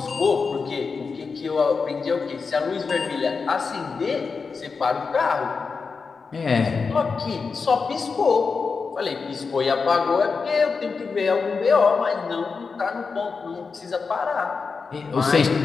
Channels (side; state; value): right; quieter; 4.9 dB